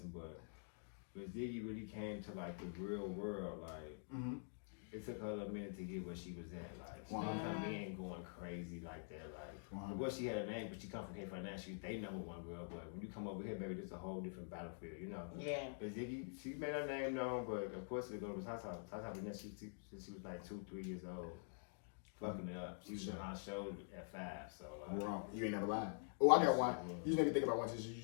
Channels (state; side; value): silent; right; digital silence